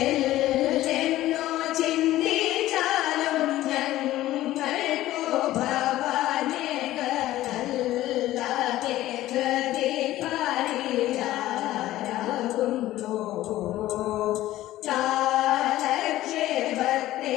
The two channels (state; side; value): quieter; right; 15.1 dB